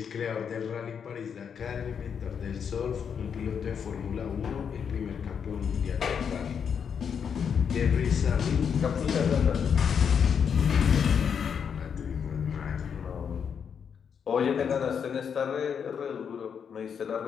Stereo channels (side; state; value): right; quieter; 7.2 dB